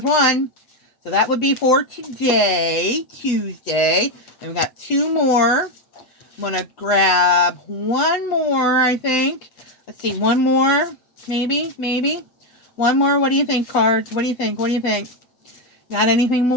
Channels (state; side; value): late; right; 8.1 ms